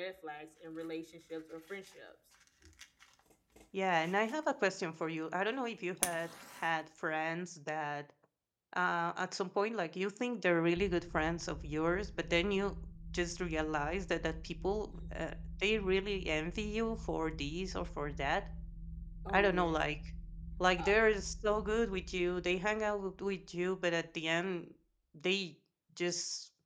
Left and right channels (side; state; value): both; identical; correlation 1.00